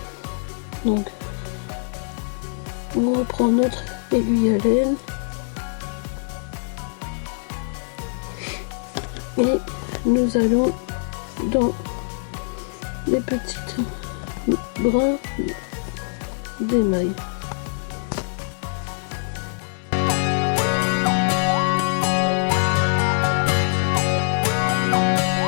Donc, on reprend notre aiguille à laine et nous allons dans les petites brins d'émail.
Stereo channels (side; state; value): right; silent; digital silence